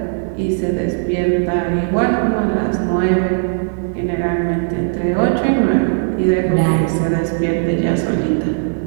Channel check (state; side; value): silent; left; digital silence